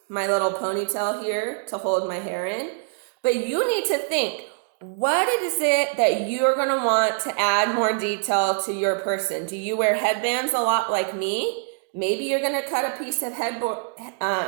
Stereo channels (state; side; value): silent; left; 62 dB below the other